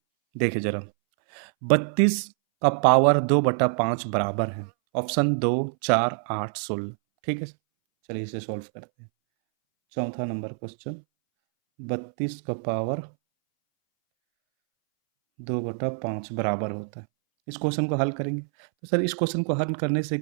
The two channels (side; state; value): left; silent; 61 dB below the other